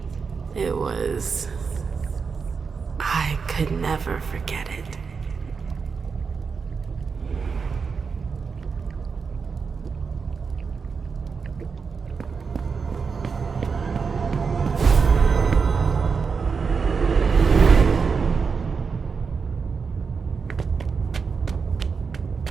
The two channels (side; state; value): left; quieter; 5.4 dB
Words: It was... I could never forget it.